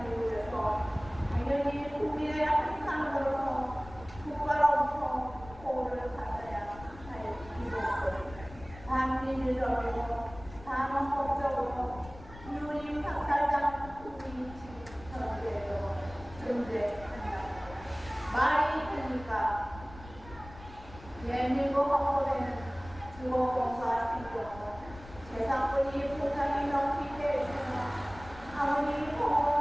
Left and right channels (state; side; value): noise; left; rumble, 17 dB below the sound